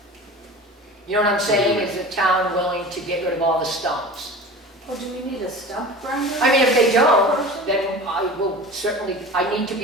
You know what I'm saying? Is the town willing to get rid of all the stumps? Well, do we need a stump grinder? I mean, if they don't, then I will certainly, I need to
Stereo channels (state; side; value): normal; both; correlation 0.36